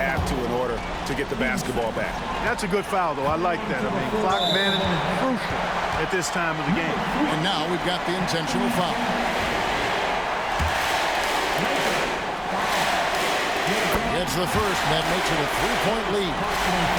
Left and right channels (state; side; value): identical; both; correlation 1.00